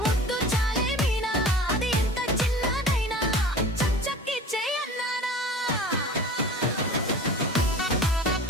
ముద్దు చాలే మీనా అది ఎంత చిన్నదైనా చక్ చక్ ఇచ్చే అన్నానా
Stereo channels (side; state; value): both; normal; correlation 0.40